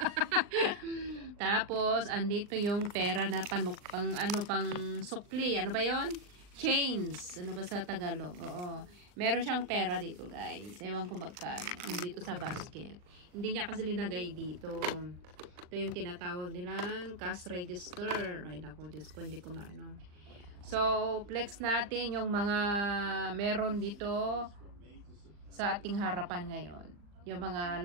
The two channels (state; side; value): late; left; 39 ms